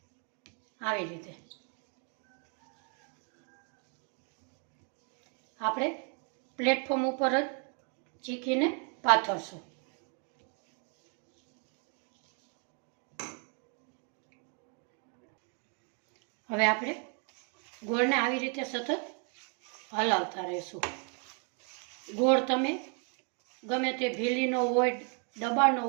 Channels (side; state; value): left; quieter; 38.2 dB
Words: આવી રીતે આપણે પ્લેટફોર્મ ઉપર જ ચીકીને પાથરશું. હવે આપણે ગોળને આવી રીતે સતત હલાવતા રહેશું. ગોળ તમે ગમે તે ભીલીનો હોય, ડબ્બાનો